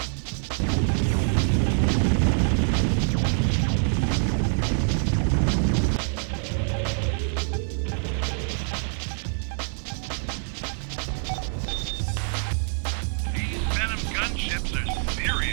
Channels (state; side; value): silent; left; 61 dB below the other